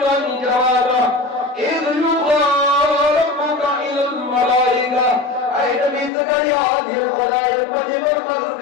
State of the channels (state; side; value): drops out; right; at 6.1 s